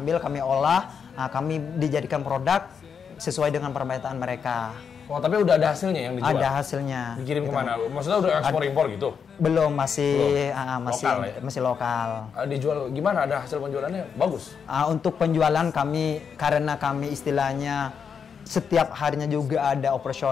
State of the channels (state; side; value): quieter; right; 6.7 dB